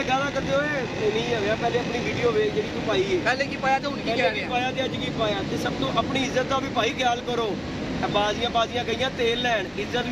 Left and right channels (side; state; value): both; identical; correlation 1.00